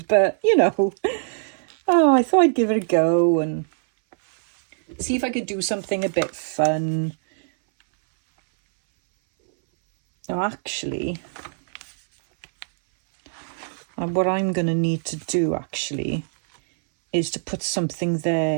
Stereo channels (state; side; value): silent; left; 62 dB below the other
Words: but you know, oh, I thought I'd give it a go and see if I could do something a bit fun. Now actually, what I'm going to need to do actually is to put something